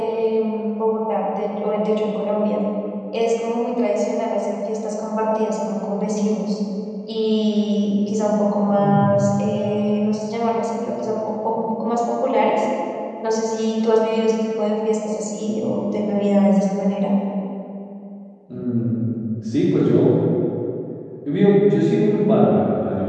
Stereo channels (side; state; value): both; identical; correlation 1.00